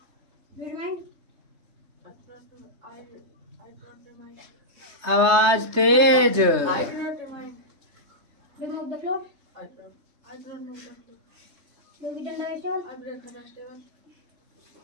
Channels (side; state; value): left; late; 3.3 ms